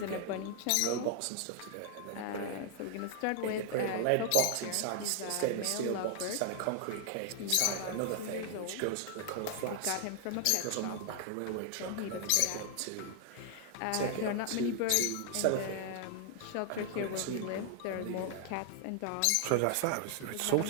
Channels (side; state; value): both; different; correlation 0.00